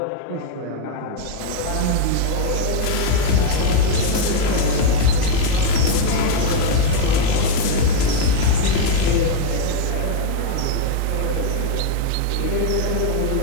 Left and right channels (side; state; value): both; different; correlation 0.00